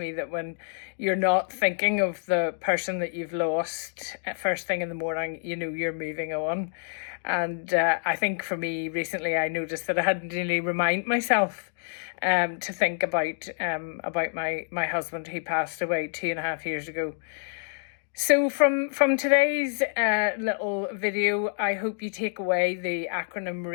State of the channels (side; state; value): right; silent; digital silence